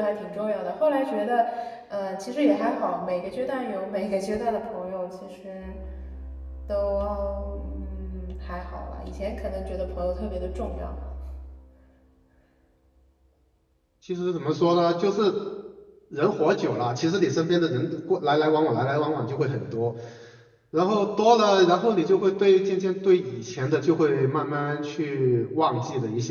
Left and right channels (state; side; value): identical; both; correlation 1.00